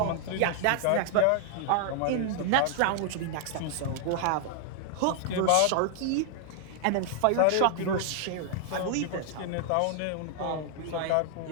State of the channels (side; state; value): both; different; correlation 0.00